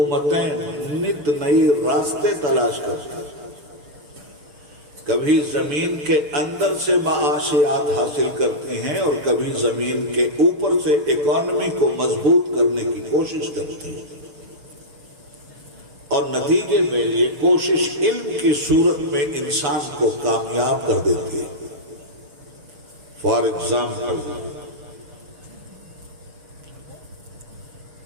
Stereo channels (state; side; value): late; left; 6.9 ms